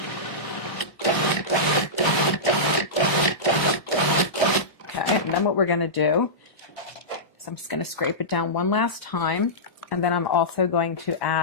Okay, and then what we're going to do is I'm just going to scrape it down one last time, and then I'm also going to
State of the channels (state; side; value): normal; both; correlation -0.16